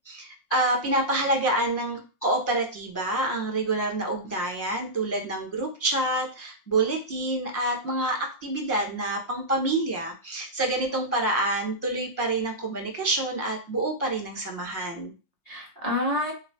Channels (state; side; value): late; right; 5.6 ms